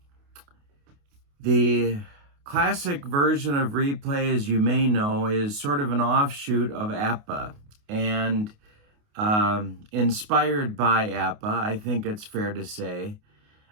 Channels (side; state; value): left; late; 28 ms